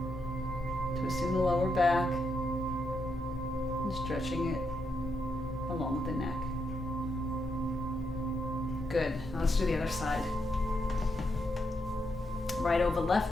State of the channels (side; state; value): both; normal; correlation 0.81